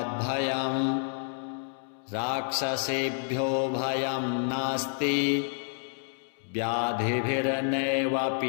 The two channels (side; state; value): right; silent; digital silence